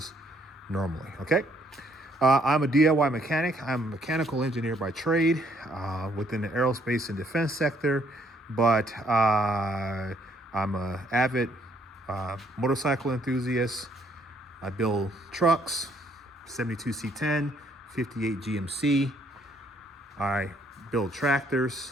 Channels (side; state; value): both; normal; correlation 0.67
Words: normally. Okay. I'm a DIY mechanic. I'm a mechanical engineer by trade within the aerospace and defense sector, but I'm an avid motorcycle enthusiast. I build trucks, 72 C10, 58 GMC. I build tractors,